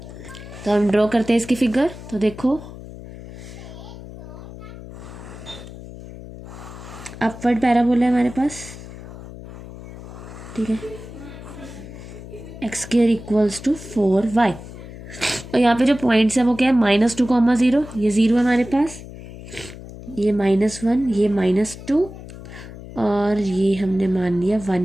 तो हम ड्रॉ करते हैं इसकी फिगर। तो देखो अपवर्ड पैराबोला है हमारे पास। ठीक है, x² इक्वल्स टू 4y, और यहाँ पे जो पॉइंट्स है वो क्या है -2, 0, ये 0 है हमारे पास, ये -1, ये -2, और ये हमने मान लिया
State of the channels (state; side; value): noise; left; hum, 14 dB below the sound